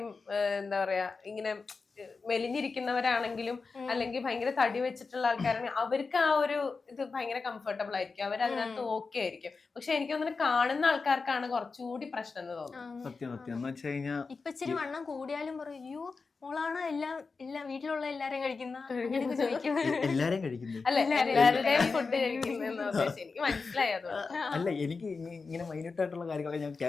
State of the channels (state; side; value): quieter; right; 4.5 dB